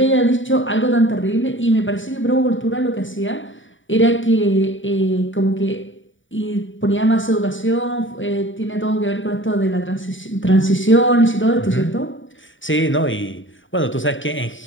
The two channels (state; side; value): late; right; 0.56 ms